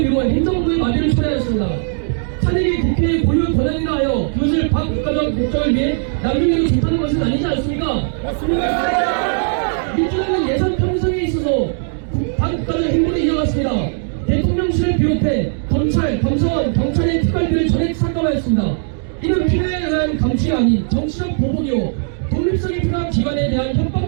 행정부의 마비를 초래하였습니다. 탄핵이 국회의 고유 권한이라 하여 그것을 반국가적 목적을 위해 남용해도 좋다는 것은 아니지 않습니까? 맞습니다. 민주당은 예산 편성에 있어서 반국가적 행보를 이어갔습니다. 대통령실을 비롯해 검찰, 감사원, 경찰의 특활비를 전액 삭감하였습니다. 이는 필요에 의한 감시가 아닌 정치적 보복이요 독립성이 필요한 기관에 대한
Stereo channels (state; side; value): silent; left; 67 dB below the other